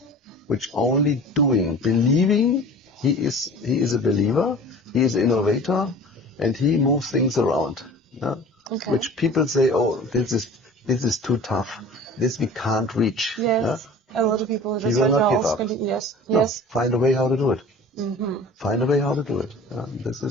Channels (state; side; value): normal; both; correlation 0.42